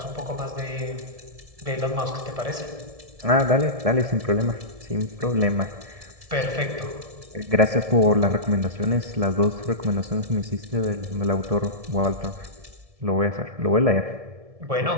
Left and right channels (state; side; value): late; left; 1.7 ms